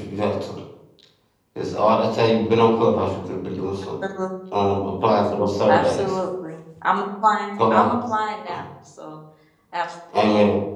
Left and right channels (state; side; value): identical; both; correlation 1.00